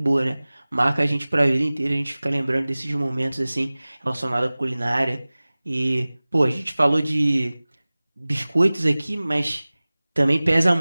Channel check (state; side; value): inverted; both; correlation -0.99